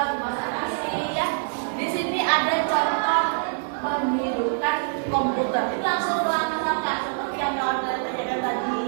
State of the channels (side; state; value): left; silent; 62 dB below the other